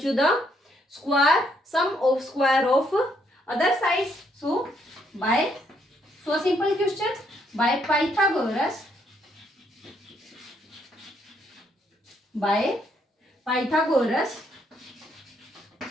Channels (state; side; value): normal; both; correlation 0.72